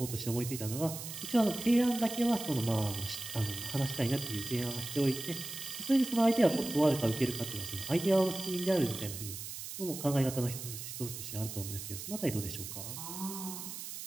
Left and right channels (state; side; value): noise; right; hiss, 8 dB below the sound